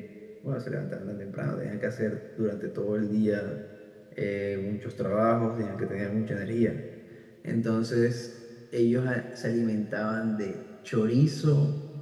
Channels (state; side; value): identical; both; correlation 1.00